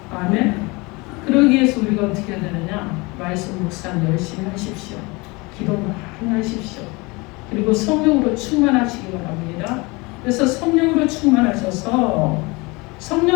아멘. 그러기 위해서 우리가 어떻게 해야 되느냐? 말씀 묵상 열심히 하십시오. 기도 많이 하십시오. 그리고 성령으로 충만하시기 바랍니다. 그래서 성령으로 충만하셔서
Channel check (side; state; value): right; quieter; 25.6 dB